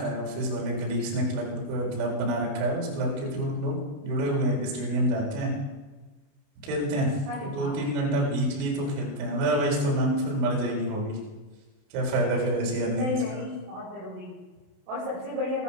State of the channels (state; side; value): late; left; 28 ms